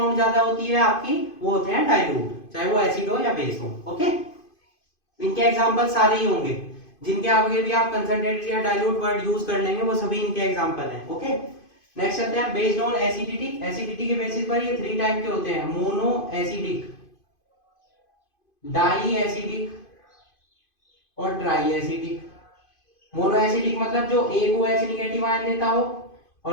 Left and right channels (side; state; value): right; late; 2.5 ms